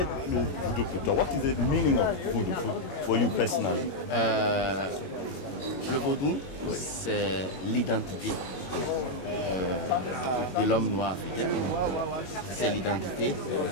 le Voodoo pour toi? What is the meaning of Voodoo for you personally? Le Vodou, c'est l'identité de l'homme noir africain. C'est l'identité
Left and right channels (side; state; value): right; late; 22 ms